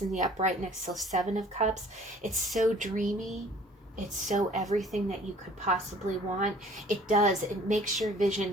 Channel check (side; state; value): both; normal; correlation 0.53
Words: in the upright next to 7 of Cups, it's so dreamy. It's so everything that you could possibly want. It makes your vision